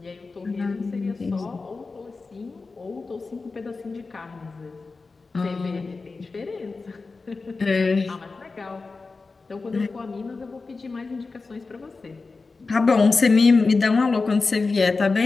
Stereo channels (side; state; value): right; quieter; 4.0 dB